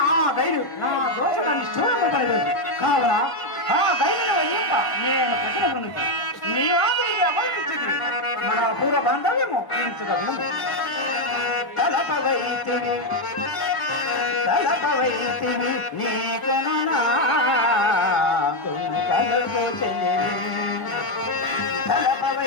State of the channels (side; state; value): right; late; 1.1 ms